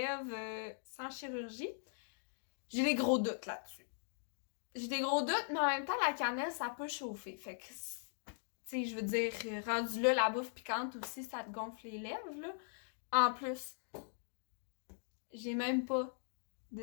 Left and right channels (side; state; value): right; silent; digital silence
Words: sans chirurgie. J'ai des gros doutes là-dessus. J'ai des gros doutes, mais en même temps, la cannelle, ça peut chauffer. Fait que, tu sais, je veux dire, rendu là, la bouffe piquante aussi, ça te gonfle les lèvres, là. En plus, j'ai même pas